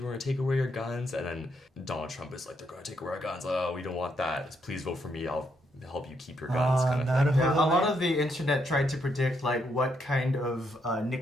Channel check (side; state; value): both; normal; correlation 0.76